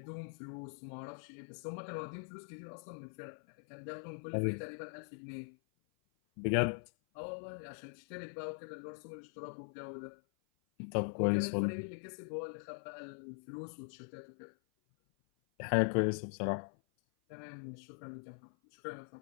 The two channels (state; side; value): silent; right; 50 dB below the other